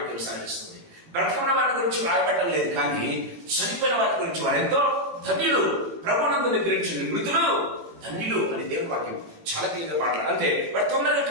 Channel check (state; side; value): late; left; 18 ms